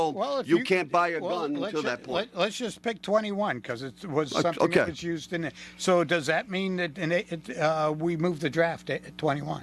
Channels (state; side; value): identical; both; correlation 1.00